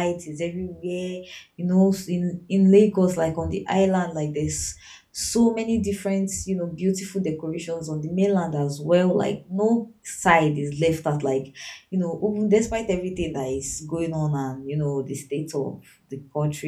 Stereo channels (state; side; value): identical; both; correlation 1.00